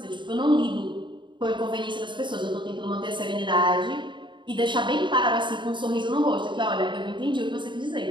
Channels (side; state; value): left; late; 0.23 ms